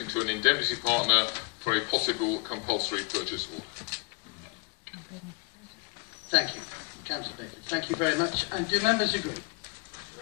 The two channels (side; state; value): right; quieter; 31.6 dB